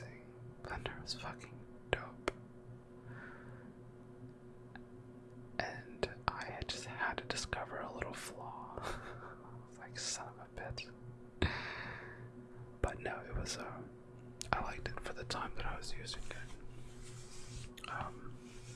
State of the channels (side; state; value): both; identical; correlation 1.00